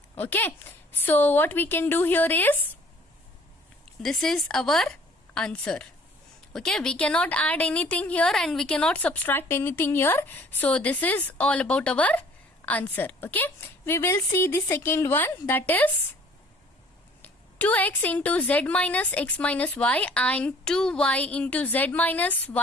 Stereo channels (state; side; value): normal; both; correlation 0.54